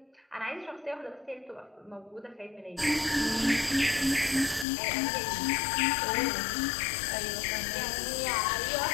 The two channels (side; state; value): right; drops out; at 4.7 s